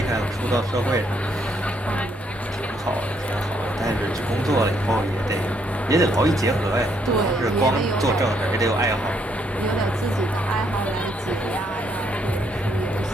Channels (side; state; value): both; normal; correlation 0.72